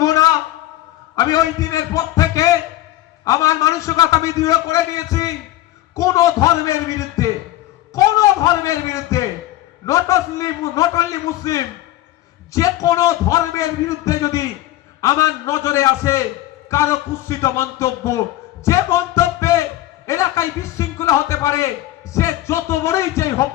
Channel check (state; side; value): quieter; right; 15.1 dB